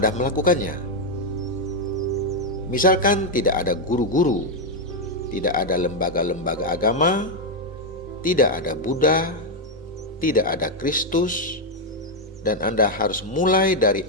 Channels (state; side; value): normal; both; correlation 0.02